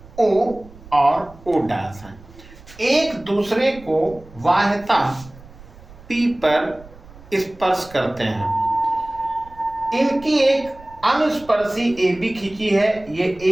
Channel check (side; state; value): right; noise; rumble, 21 dB below the sound